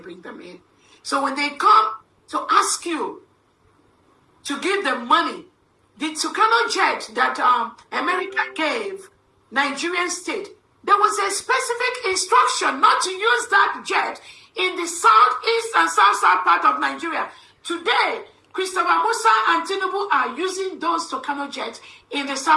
them in. So when they come to ask you to give them money, the Tucano jet that America gave Nigerian state, there was a specific instruction not to use that jet in the southeast and south part of Nigeria. Today, Christopher Musa and Tinubu are using those Tucano jets in the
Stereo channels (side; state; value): both; identical; correlation 1.00